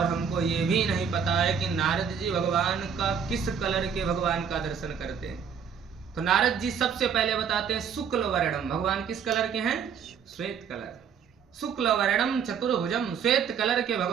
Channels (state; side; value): quieter; left; 7.2 dB